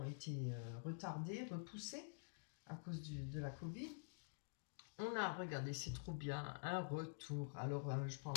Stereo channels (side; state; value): right; silent; digital silence